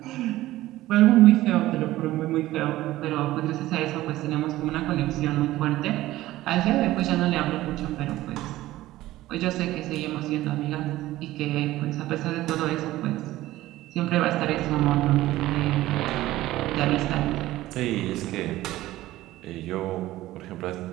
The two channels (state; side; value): quieter; left; 16.1 dB